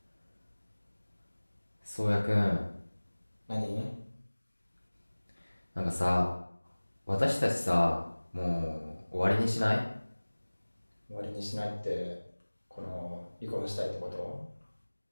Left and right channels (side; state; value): both; inverted; correlation -1.00